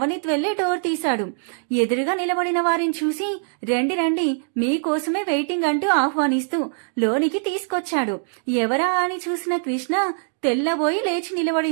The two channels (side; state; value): left; silent; digital silence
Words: వెళ్లి డోర్ తీశాడు. ఎదురుగా నిలబడిన వారిని చూసి రండి రండి మీకోసమే వెయిటింగ్ అంటూ ఆహ్వానిస్తూ లోనికి తీసుకొచ్చాడు. ఎవరా అని చూసిన కృష్ణ తెల్లబోయి లేచి